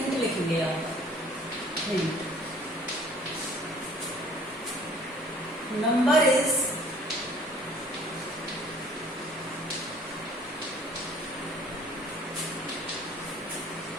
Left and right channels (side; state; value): both; normal; correlation 0.54